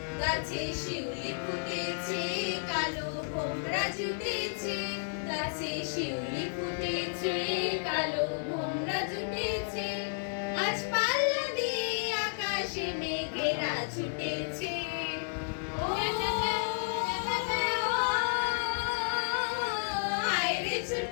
গাছে শিউলি ফুটেছে, কালো ভোমরা জুটেছে। গাছে শিউলি ফুটেছে, কালো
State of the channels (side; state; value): right; silent; digital silence